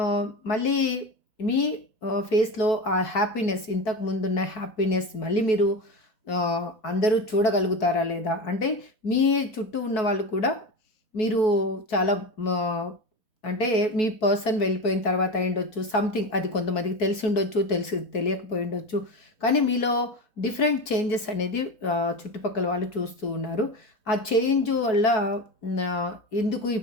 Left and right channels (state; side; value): late; right; 4.6 ms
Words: మళ్ళీ మీ ఫేస్‌లో ఆ హ్యాపీనెస్ ఇంతకు ముందున్న హ్యాపీనెస్ మళ్ళీ మీరు అందరూ చూడగలుగుతారా లేదా? అంటే మీ చుట్టూ ఉన్న వాళ్ళు కూడా మీరు చాలా మా అంటే మీ పర్సన్ వెళ్ళిపోయిన తర్వాత అయ్యుండొచ్చు. సంథింగ్ అది కొంతమందికి తెలిసుండొచ్చు, తెలియకపోయుండొచ్చు. కానీ మీలో డిఫరెంట్ చేంజెస్ అనేది చుట్టుపక్కల వాళ్ళు చూస్తూ ఉన్నారు. ఆ చేంజ్ వల్ల ఎందుకు ఈ